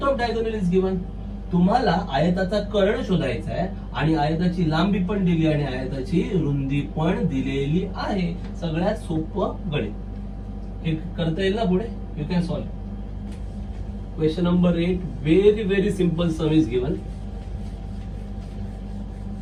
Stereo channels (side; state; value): both; identical; correlation 1.00